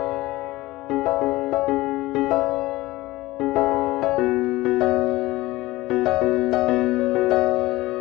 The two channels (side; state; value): right; quieter; 18.8 dB